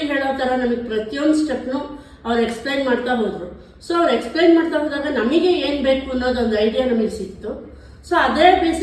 ಹೇಳೋ ಥರ ನಮಗೆ ಪ್ರತಿಯೊಂದು ಸ್ಟೆಪ್ನು ಅವ್ರು ಎಕ್ಸ್ಪ್ಲೈನ್ ಮಾಡ್ತಾ ಹೋದರು. ಸೊ ಅವ್ರು ಎಕ್ಸ್ಪ್ಲೈನ್ ಮಾಡ್ತಾ ಹೋದಾಗ ನಮಗೆ ಏನು ಬೇಕು ಅನ್ನೋದೊಂದು ಐಡಿಯಾ ನಮಗೆ ಸಿಕ್ತು. ಸೊ ಅದೇ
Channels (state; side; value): identical; both; correlation 1.00